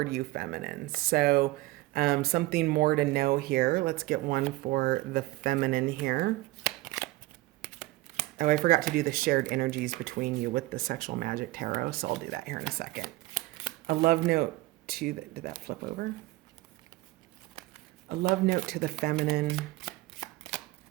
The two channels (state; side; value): quieter; left; 19.0 dB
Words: you, feminine. So something more to know here. Let's get one for the feminine here. Oh, I forgot to do the shared energies between you with the Sexual Magic Tarot, so I'll do that here in a second. A love note to did that flip over? A love note to the feminine.